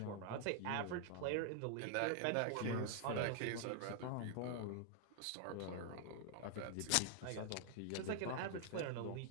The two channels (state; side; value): different; both; correlation 0.00